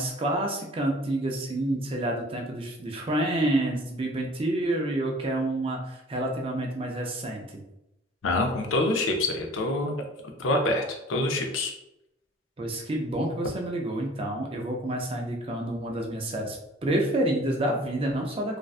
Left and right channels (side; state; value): both; normal; correlation 0.48